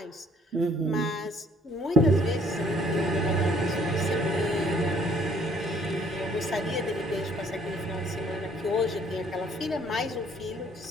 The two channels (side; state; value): both; normal; correlation 0.61